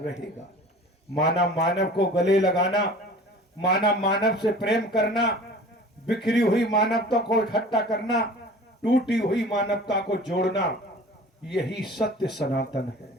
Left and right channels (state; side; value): normal; both; correlation 0.43